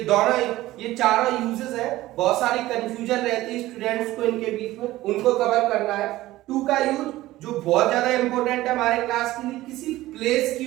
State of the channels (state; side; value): quieter; left; 16.6 dB